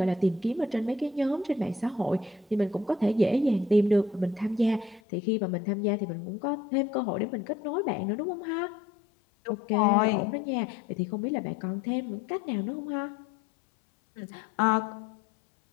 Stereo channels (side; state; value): right; drops out; at 5.0 s